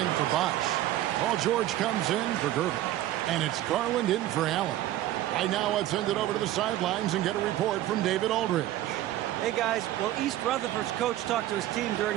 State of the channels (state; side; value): quieter; left; 14.1 dB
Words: for Bosch. Paul George comes in for Gervin. And it's Garland in for Allen. Right now, let's send it over to the sidelines and get a report from David Aldridge. Hey, guys. Well, East Rutherford's coach talked to his team